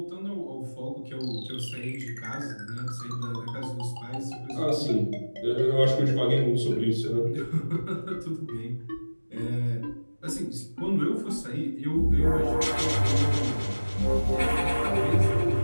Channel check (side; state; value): both; inverted; correlation -1.00